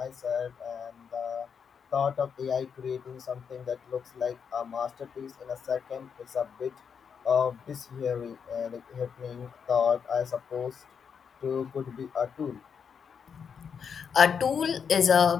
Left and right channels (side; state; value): right; quieter; 6.8 dB